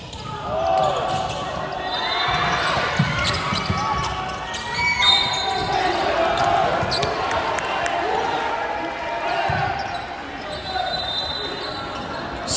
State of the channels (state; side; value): identical; both; correlation 1.00